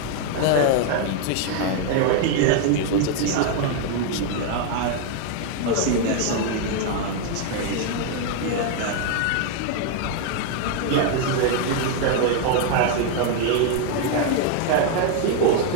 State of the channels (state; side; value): different; both; correlation 0.00